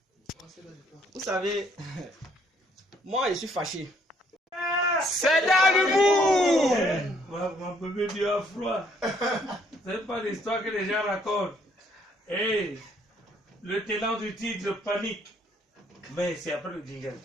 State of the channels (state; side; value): normal; both; correlation 0.66